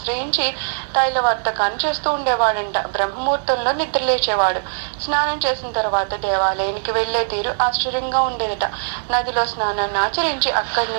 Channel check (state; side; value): silent; left; digital silence